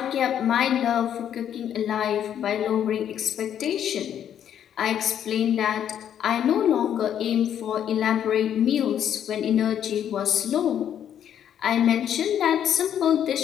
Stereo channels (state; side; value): quieter; right; 9.7 dB